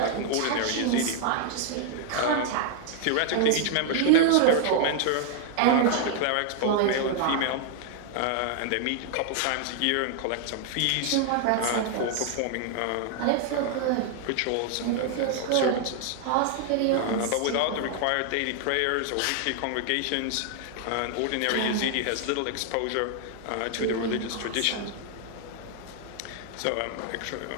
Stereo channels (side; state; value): both; different; correlation 0.00